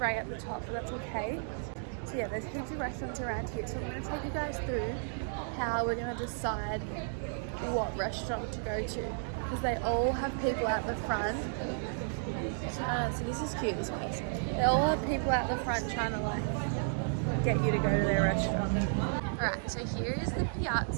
at the top, but that's okay. So yeah, there's heaps of restaurants around here, so I'm going to take you guys through how we're going to decide what restaurant to go to, because they all have people at the front. So this is cute, this place. They all have people at the front trying to like get you to go to their restaurant. Alright, so here is the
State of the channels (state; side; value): silent; left; digital silence